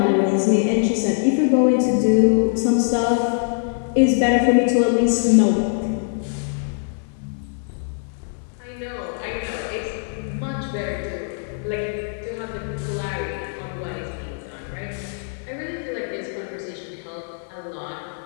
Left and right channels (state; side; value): silent; right; digital silence